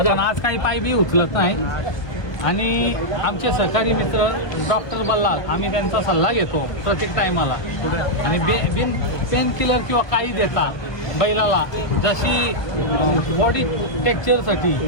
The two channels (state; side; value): late; right; 1.2 ms